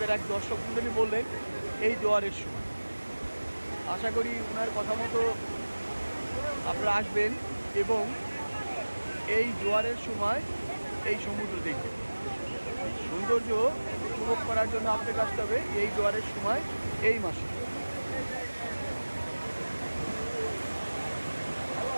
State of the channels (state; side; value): inverted; both; correlation -1.00